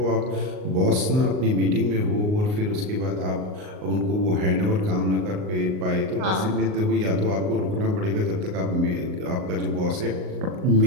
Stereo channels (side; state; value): left; late; 38 ms